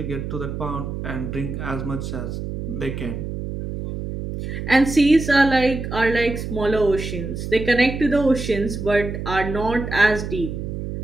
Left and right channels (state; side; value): noise; right; hum, 6 dB below the sound